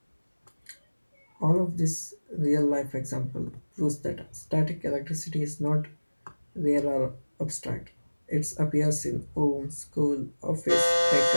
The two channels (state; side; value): inverted; both; correlation -1.00